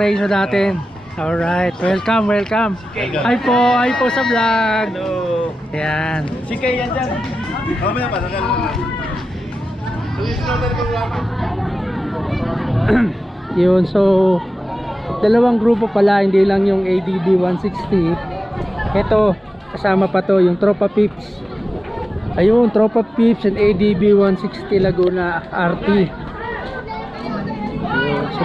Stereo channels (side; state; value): both; normal; correlation 0.94